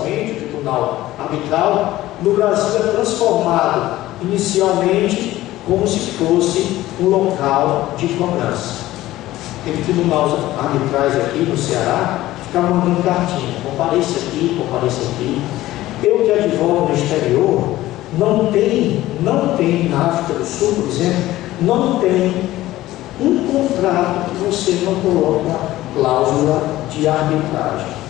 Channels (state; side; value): quieter; right; 15.9 dB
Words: o tribunal arbitral. No Brasil é transformado inicialmente como se fosse um local de cobrança. Teve tribunais arbitrais aqui no Ceará que ficavam mandando cartinha, compareça aqui. Eu que advogo no exterior, não tem na África do Sul, por exemplo, não tem um contrato que você não coloca cláusula de arbitragem.